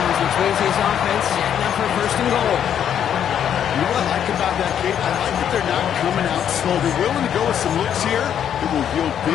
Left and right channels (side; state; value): right; quieter; 9.3 dB